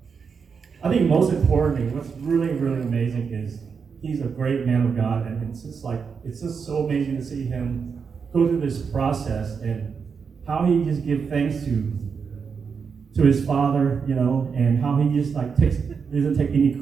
I think most importantly, what's really, really amazing is he's a great man of God, and it's just so amazing to see him go through this process and how he just gives thanks to his father, you know, and how he just like doesn't take any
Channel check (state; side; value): quieter; left; 5.9 dB